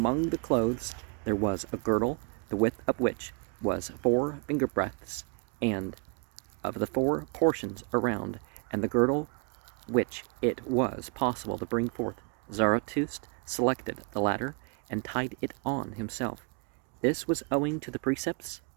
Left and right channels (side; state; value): left; quieter; 34.8 dB